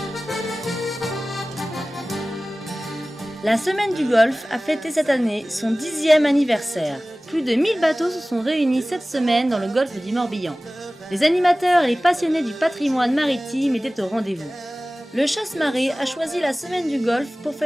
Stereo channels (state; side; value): normal; both; correlation 0.98